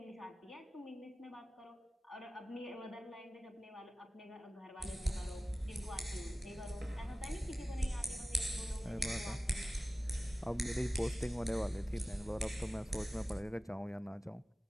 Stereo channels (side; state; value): both; normal; correlation 0.96